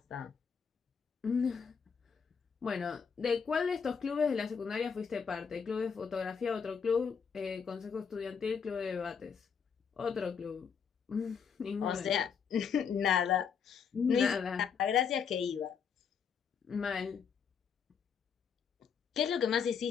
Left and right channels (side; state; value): right; quieter; 6.6 dB